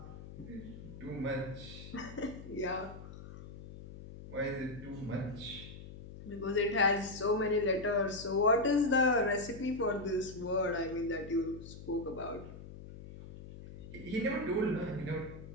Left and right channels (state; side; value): noise; left; hum, 13 dB below the sound